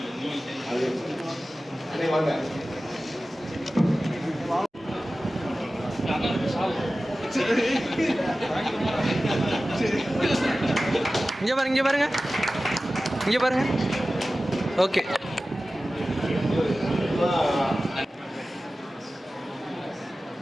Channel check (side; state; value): both; normal; correlation 0.96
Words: வாங்க. இங்கே பாருங்க, இங்கே பாருங்க, இங்கே பாருங்க. ஓகே.